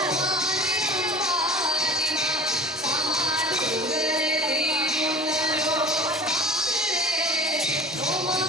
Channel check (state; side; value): normal; both; correlation 0.40